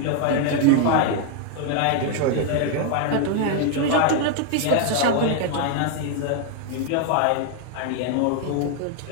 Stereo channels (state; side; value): different; both; correlation 0.00